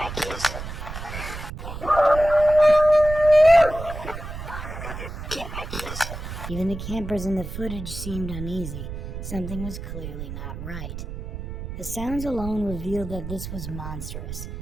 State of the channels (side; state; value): right; noise; rumble, 8 dB below the sound